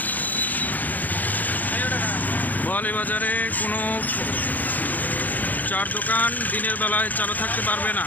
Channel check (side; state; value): right; late; 0.082 ms